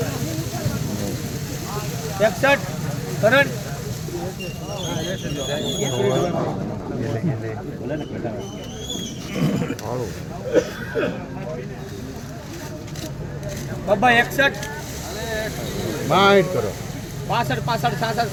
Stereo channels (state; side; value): identical; both; correlation 1.00